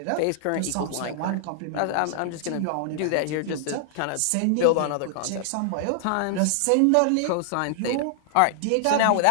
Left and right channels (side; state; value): both; different; correlation -0.01